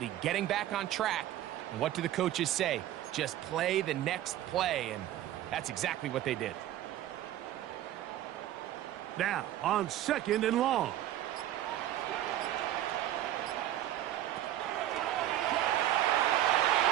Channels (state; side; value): quieter; left; 13.1 dB